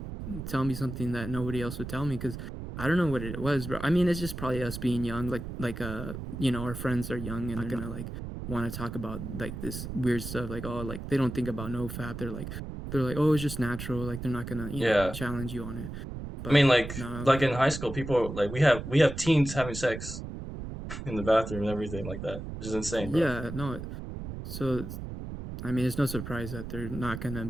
tell me something that nobody else would tell me, because I don't know what it was, bro. I mean, it's just probably us being young, you know, our friends are young and they're gonna like want to talk about like this weird stuff, like oh, like they don't think about no fap. They're like, oh, it's just natural. Like they're not gonna, you know, Yeah. challenge you on it. I mean, But no, like in high school, people like we have teens having sex in the bathroom and everything like that, which is insane, bro. yeah, no. So I mean, it's no surprise that they're not gonna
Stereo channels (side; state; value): right; noise; rumble, 8 dB below the sound